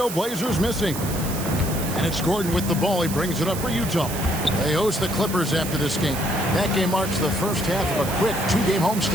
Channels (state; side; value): noise; right; hiss, 9 dB below the sound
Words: missing. And it's Gordon with the ball. He brings it up for Utah. They host the Clippers after this game. That game marks the first half of a quick 2-game